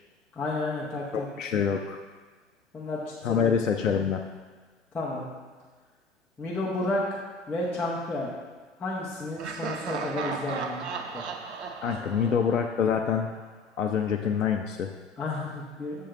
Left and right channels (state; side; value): quieter; right; 4.3 dB